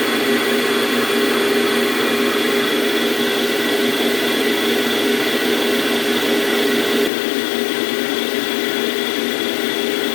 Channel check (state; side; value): drops out; right; at 7.1 s